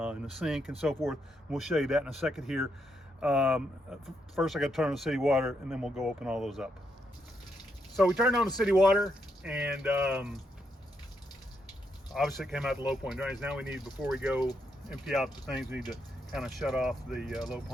the sink and so forth. We'll show you that in a second here. First I got to turn on the city water, and then we'll go open all those up. So we turned on the city water, and obviously it came out the low point drains. Now before we go empty out the things, we need to kind of shut off the low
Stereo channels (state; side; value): normal; both; correlation 0.79